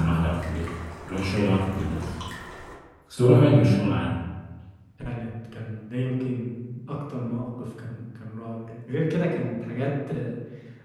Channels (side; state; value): both; identical; correlation 1.00